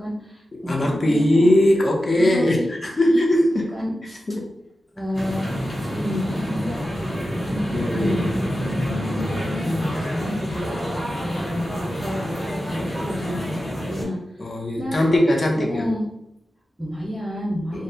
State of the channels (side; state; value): both; normal; correlation 0.92